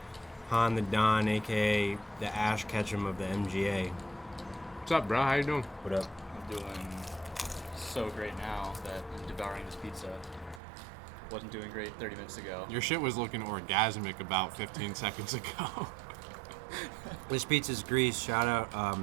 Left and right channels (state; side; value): drops out; left; at 10.6 s